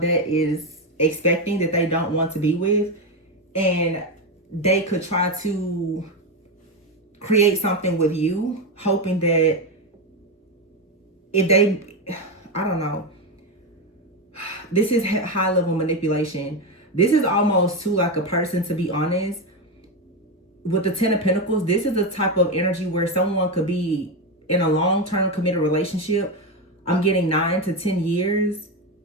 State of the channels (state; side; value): normal; both; correlation 0.12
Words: that is expecting that they don't want to be with. And they could try to create something with you, hoping that if they, I don't know. This is high level manipulation. This is almost too like a person, to be honest. With the Ten of Pentacles, this is the type of energy where someone could be in a long-term committed relationship, I'm getting 9 to 10 years.